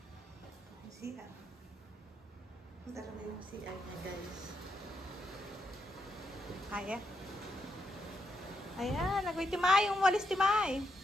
CR. Dala na yung CR niya guys. Kaya? Ayan, nagawin Timay. Umalis Timay.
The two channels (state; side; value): normal; both; correlation 0.81